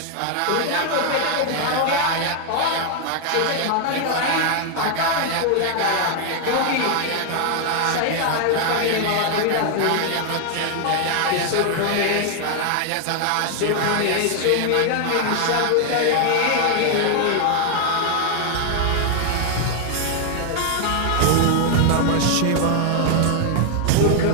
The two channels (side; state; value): both; different; correlation 0.00